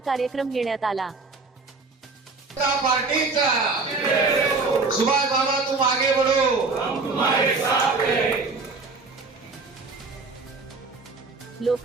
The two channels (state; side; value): quieter; left; 4.0 dB